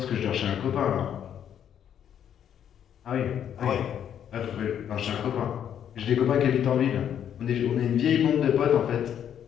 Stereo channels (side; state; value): right; quieter; 9.3 dB